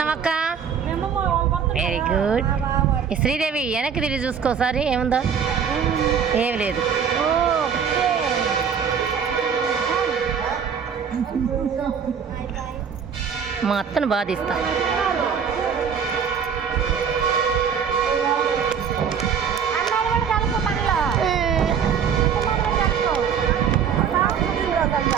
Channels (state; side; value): quieter; left; 7.2 dB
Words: వెరీ గుడ్. శ్రీదేవి వెనక్కి తిరిగి చూసుకోసారి, ఏముందో ఏమి లేదు. మా అత్తను బాధిస్తా.